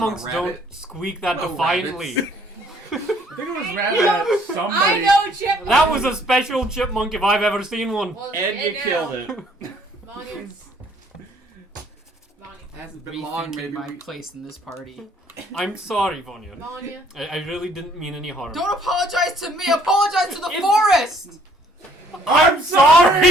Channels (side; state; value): both; normal; correlation 0.62